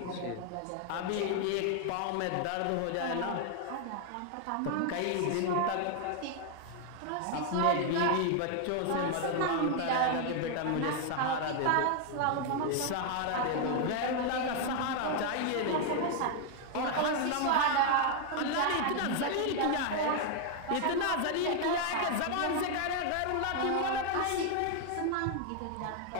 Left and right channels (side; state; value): both; different; correlation 0.00